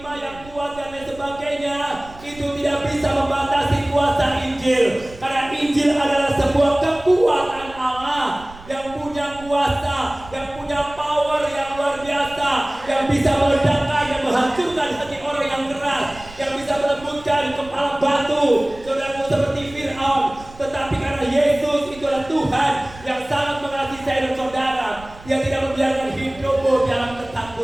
yang kuat dan lain sebagainya, itu tidak bisa membatasi kuasa Injil. Karena Injil adalah sebuah kekuatan Allah yang punya kuasa, yang punya power yang luar biasa, yang bisa meledakkan dan menghancurkan hati orang yang keras, yang bisa melembutkan kepala batu, saudaraku, seperti Fir'aun. Tetapi karena Yesus itu adalah Tuhan yang sangat mengasihi saya dan saudara, Dia tidak membiarkan hidupmu dalam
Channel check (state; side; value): noise; right; rumble, 20 dB below the sound